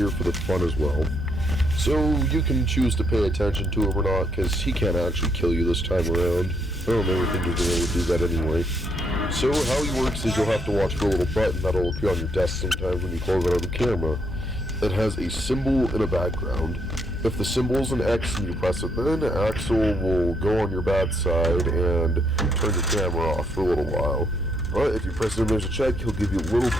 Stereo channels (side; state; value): both; normal; correlation 0.73